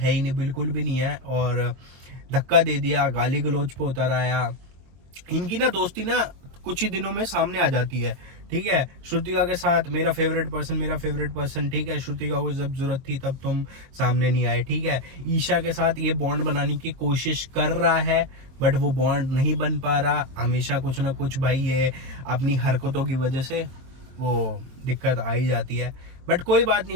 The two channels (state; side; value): late; left; 23 ms